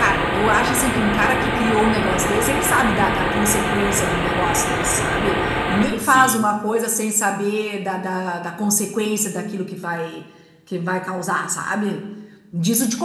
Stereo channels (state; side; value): identical; both; correlation 1.00